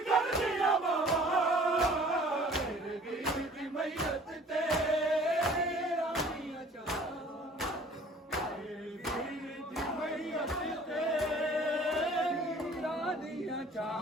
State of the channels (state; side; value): normal; both; correlation 0.50